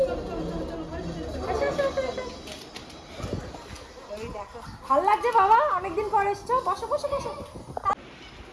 ভাল লাগছে বাবা, অনেকদিন পর এসছো, বসো বসো বসো।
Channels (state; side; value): identical; both; correlation 1.00